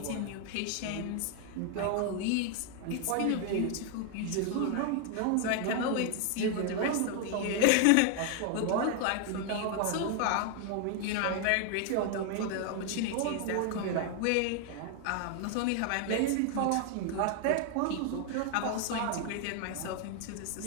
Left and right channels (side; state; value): both; different; correlation 0.00